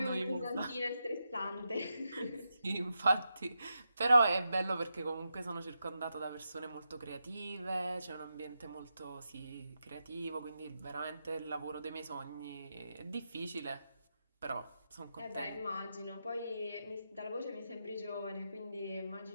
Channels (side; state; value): both; inverted; correlation -0.87